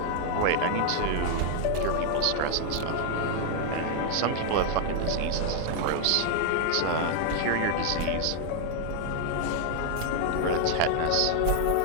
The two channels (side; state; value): both; different; correlation 0.00